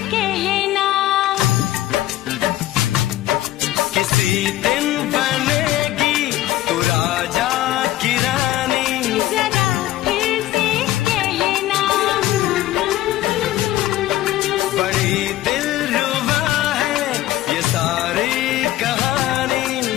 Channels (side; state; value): right; quieter; 14.9 dB